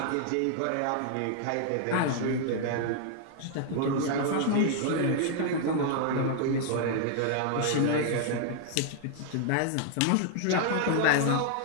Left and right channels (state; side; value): different; both; correlation -0.01